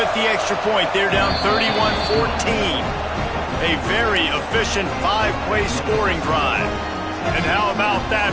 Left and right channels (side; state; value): both; identical; correlation 1.00